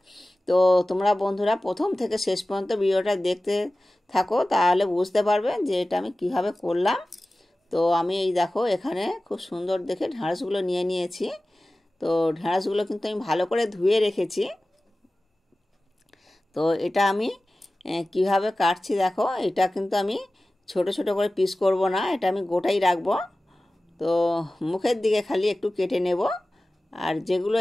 তো তোমরা বন্ধুরা প্রথম থেকে শেষ পর্যন্ত ভিডিওটা দেখতে থাকো, তাহলে বুঝতে পারবে যে এটা আমি কিভাবে করলাম। তো আমি এই দেখো এখানে খুব সুন্দর দেখে ঢ্যাঁড়সগুলো নিয়ে নিয়েছি। তো ঢ্যাঁড়সগুলো কিন্তু আমি ভালো করে ধুয়ে রেখেছি। তো এটা আমি কিভাবে কাটছি দেখো। এটা কিন্তু আমি ছোট ছোট করে পিস করব না, এটা আমি গোটাই রাখবো। তো মুখের দিকে খালি একটু কেটে নেব, আর যেগুলো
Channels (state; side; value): normal; both; correlation 0.96